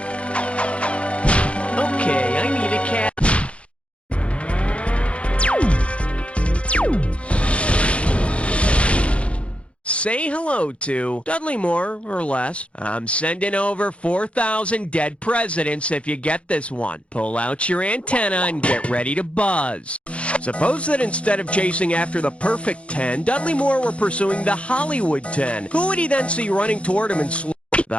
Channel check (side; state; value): right; late; 0.061 ms